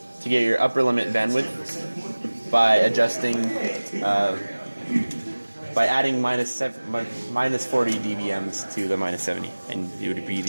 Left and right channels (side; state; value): both; inverted; correlation -1.00